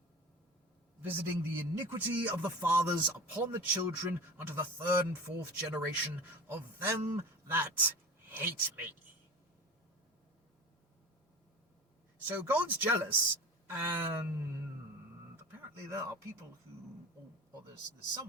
visiting the iniquity of the fathers upon the children unto the third and fourth generation of them that hate me." So God's jealous, and apparently there are people who, or there's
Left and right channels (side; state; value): both; normal; correlation 0.34